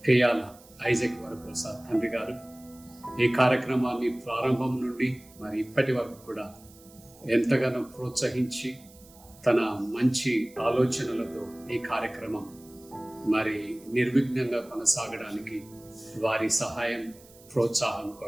Kayala Isaac Varaprasad తండ్రి గారు ఈ కార్యక్రమాన్ని ప్రారంభం నుండి మరి ఇప్పటి వరకు కూడా ఎంతగానో ప్రోత్సహించి తన మంచి ఆలోచనలతో ఈ కార్యక్రమం మరి నిర్విఘ్నంగా కొనసాగడానికి వారి సహాయం ప్రోత్సాహం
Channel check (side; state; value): right; noise; hiss, 24 dB below the sound